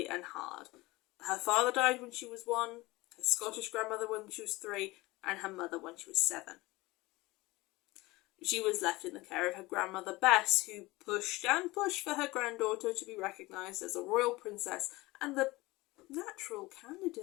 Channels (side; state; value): right; quieter; 20.9 dB